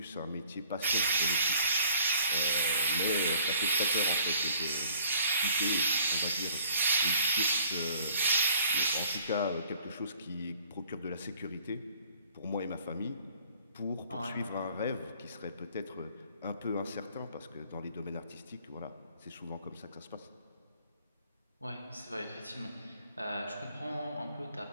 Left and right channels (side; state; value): both; inverted; correlation -0.57